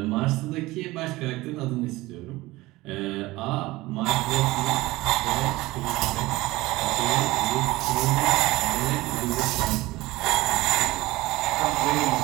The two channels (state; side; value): quieter; left; 19.6 dB